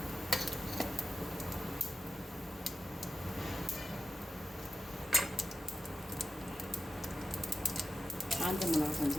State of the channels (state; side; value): normal; both; correlation 0.91